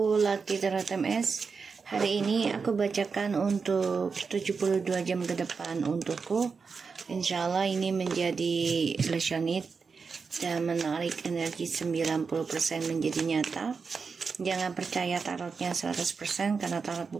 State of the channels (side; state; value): left; quieter; 5.2 dB